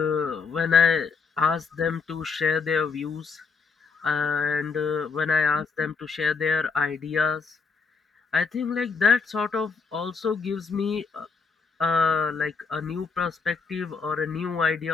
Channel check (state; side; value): quieter; right; 5.1 dB